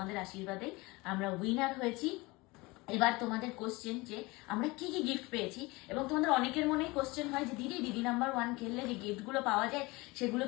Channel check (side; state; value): right; quieter; 23.4 dB